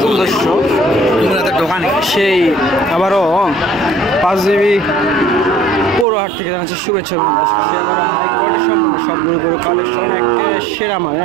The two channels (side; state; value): left; drops out; at 6.1 s